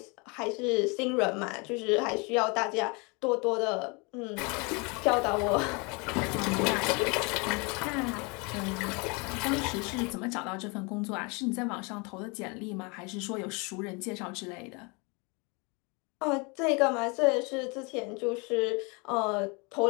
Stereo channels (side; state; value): right; quieter; 30.1 dB